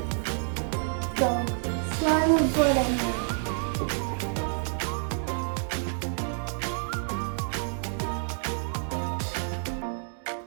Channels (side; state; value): left; silent; 59 dB below the other